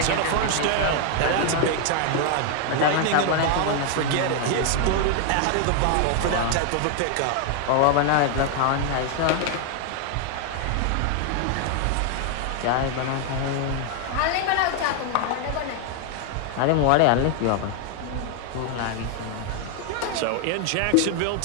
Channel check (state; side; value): different; both; correlation 0.00